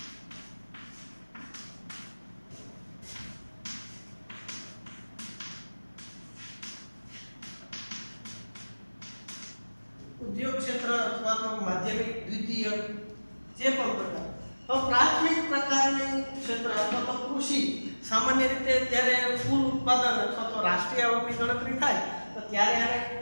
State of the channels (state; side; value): inverted; both; correlation -1.00